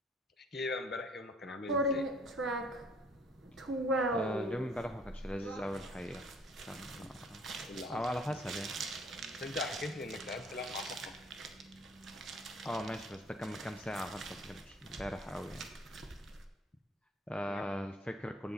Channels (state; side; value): normal; both; correlation 0.57